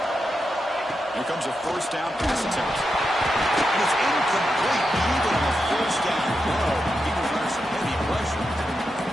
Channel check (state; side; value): normal; both; correlation 0.87